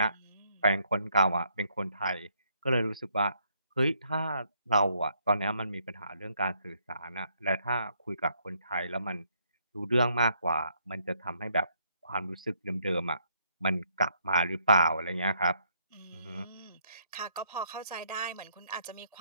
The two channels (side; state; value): both; inverted; correlation -0.71